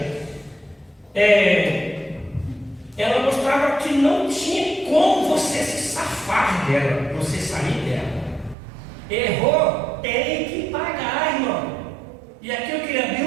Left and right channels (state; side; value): drops out; left; at 8.6 s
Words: ela mostrava que não tinha como você se safar dela, você sair dela. Errou, tem que pagar, irmão. E aqui eu queria abrir